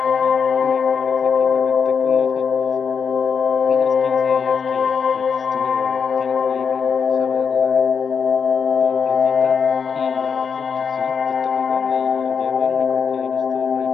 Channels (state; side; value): quieter; right; 6.3 dB